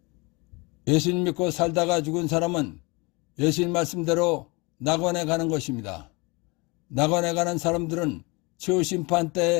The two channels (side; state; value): right; quieter; 27.2 dB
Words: 예수님 믿고 살다가 죽은 사람은 예수님 말씀대로 낙원에 가는 것입니다. 낙원에 가는 사람들은 최후 심판